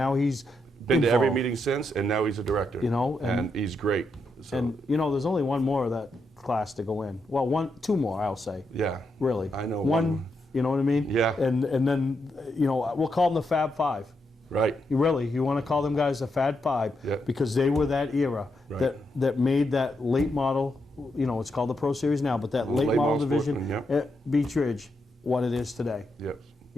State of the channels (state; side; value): normal; both; correlation 0.82